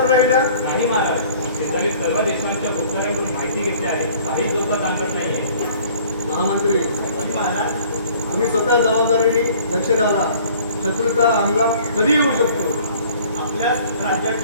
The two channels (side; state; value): both; inverted; correlation -0.52